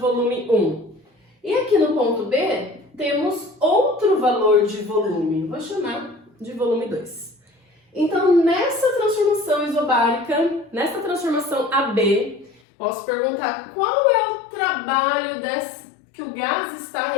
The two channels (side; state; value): right; drops out; at 12.6 s